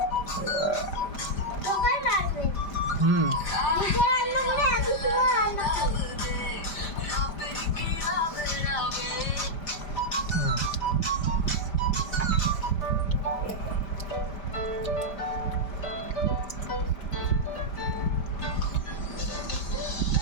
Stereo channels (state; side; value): late; right; 5.1 ms